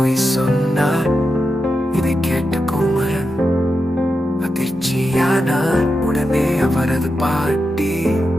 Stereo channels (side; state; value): both; normal; correlation 0.88